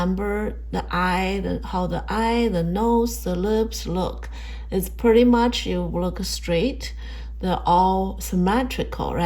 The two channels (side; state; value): both; identical; correlation 1.00